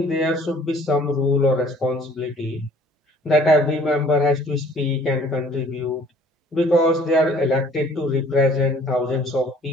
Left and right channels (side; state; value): both; normal; correlation 0.55